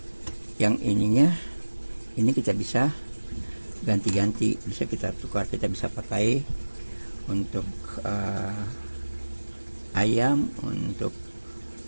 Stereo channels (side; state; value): both; inverted; correlation -1.00